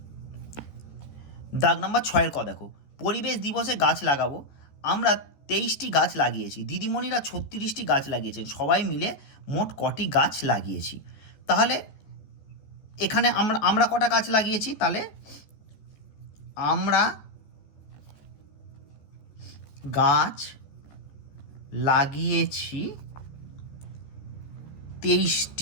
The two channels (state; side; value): late; right; 14 ms